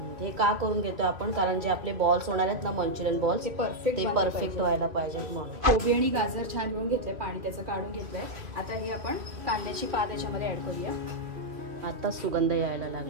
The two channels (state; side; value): late; left; 2.7 ms